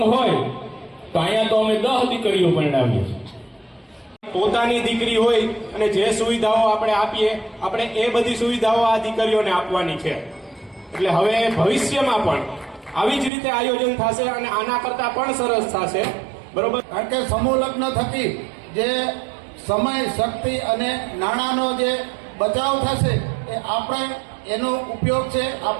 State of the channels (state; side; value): drops out; left; at 13.3 s